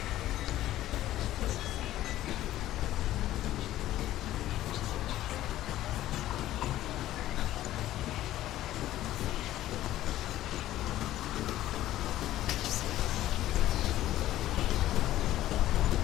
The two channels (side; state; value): right; quieter; 14.1 dB